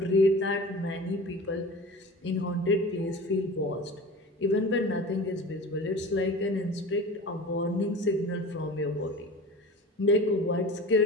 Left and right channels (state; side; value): normal; both; correlation 0.36